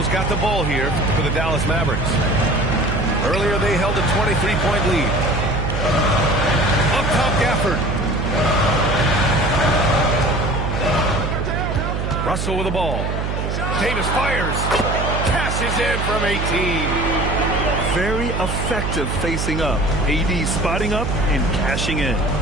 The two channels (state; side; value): noise; right; hum, 2 dB below the sound